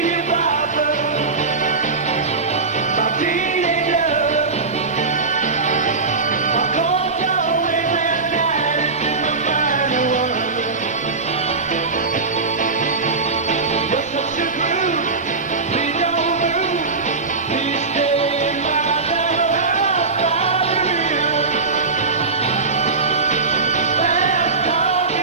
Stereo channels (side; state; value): left; quieter; 4.1 dB